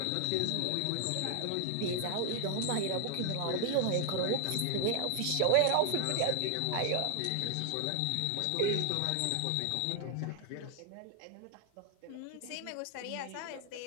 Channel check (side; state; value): both; different; correlation 0.00